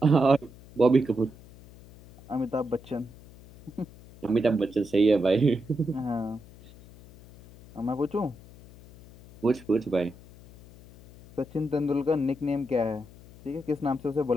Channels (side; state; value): left; noise; hum, 21 dB below the sound